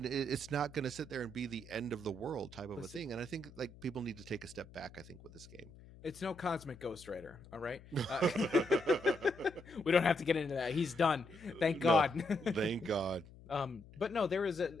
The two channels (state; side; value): noise; left; hum, 20 dB below the sound